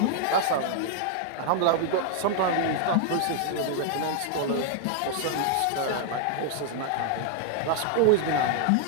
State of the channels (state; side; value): different; both; correlation 0.00